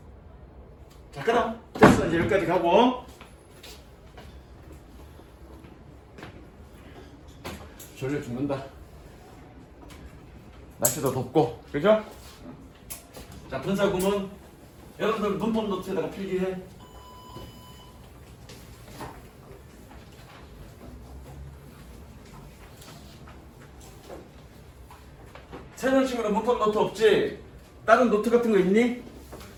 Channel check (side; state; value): both; identical; correlation 1.00